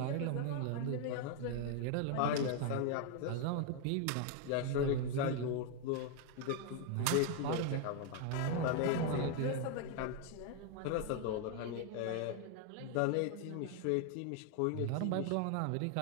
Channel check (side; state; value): both; different; correlation 0.00